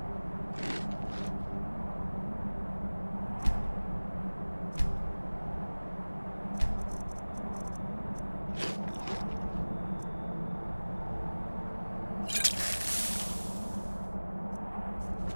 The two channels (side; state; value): both; inverted; correlation -1.00